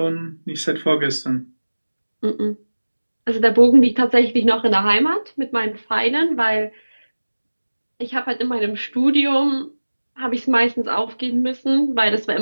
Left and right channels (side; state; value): both; inverted; correlation -1.00